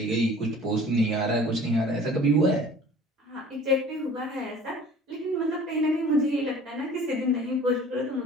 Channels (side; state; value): both; normal; correlation 0.46